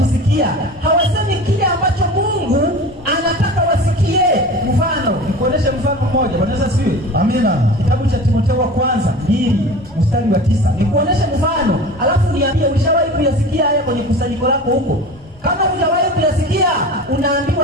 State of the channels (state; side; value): normal; both; correlation 0.36